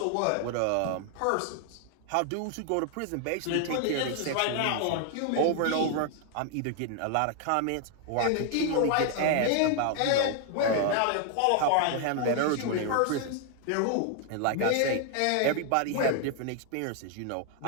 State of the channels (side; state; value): both; different; correlation 0.00